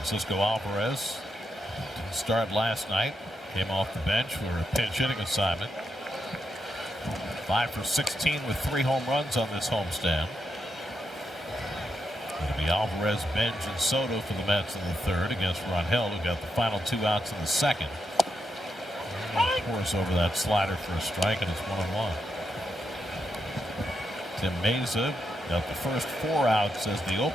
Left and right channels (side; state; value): both; normal; correlation 0.83